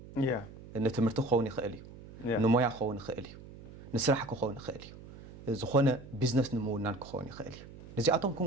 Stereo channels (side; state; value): right; noise; hum, 17 dB below the sound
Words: ان تمرت خوني خاليو نمويا خوني خاليو نسرح خوني خاليو زخونه بزنس نمونان خوني خاليو نزياتهم